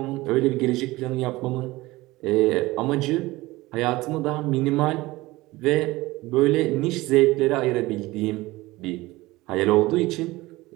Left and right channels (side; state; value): left; quieter; 19.7 dB